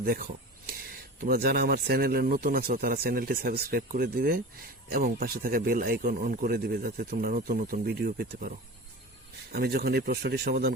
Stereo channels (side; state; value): both; normal; correlation 0.33